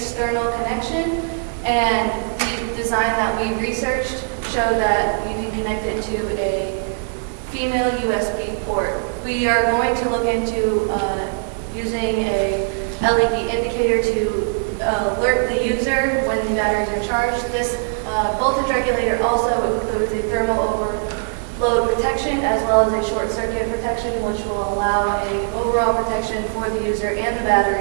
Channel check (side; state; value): left; silent; digital silence